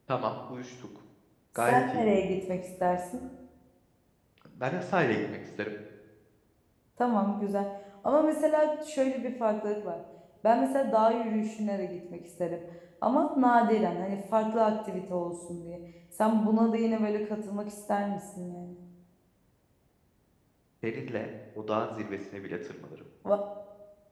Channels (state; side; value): identical; both; correlation 1.00